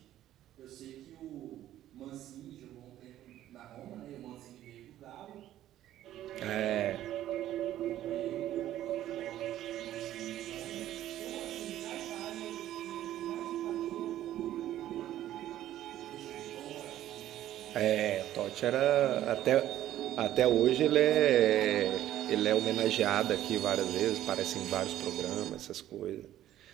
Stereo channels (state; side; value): quieter; left; 12.9 dB